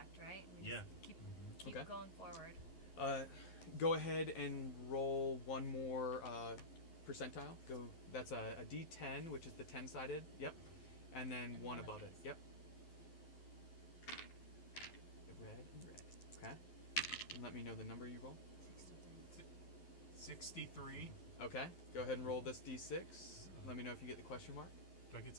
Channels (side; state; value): right; late; 11 ms